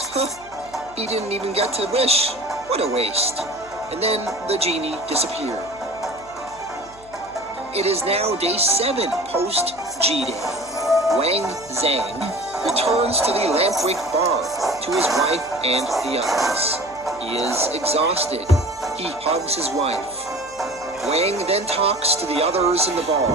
"Huh, he didn't even get to wish. What a waste." And then the genie disappeared. It is now day 7 post G-Day. Wang Zhang returns to the Lampwick bar to his wife and the others. He is exhausted. He hugs his wife. Wang then talks to the others in the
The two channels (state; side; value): noise; right; hum, 25 dB below the sound